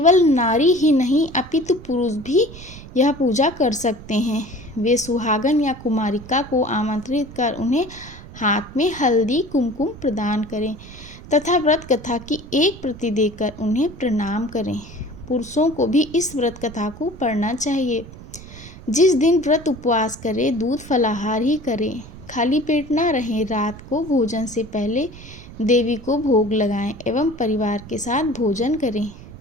नारी ही नहीं अपितु पुरुष भी यह पूजा कर सकते हैं। वे सुहागन या कुमारिका को आमंत्रित कर उन्हें हाथ में हल्दी कुमकुम प्रदान करें तथा व्रत कथा की एक प्रति देकर उन्हें प्रणाम करें। पुरुषों को भी इस व्रत कथा को पढ़ना चाहिए। जिस दिन व्रत उपवास करें दूध फलाहार ही करें, खाली पेट ना रहें। रात को भोजन से पहले देवी को भोग लगाएं एवं परिवार के साथ भोजन करें।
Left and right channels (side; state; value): right; noise; rumble, 16 dB below the sound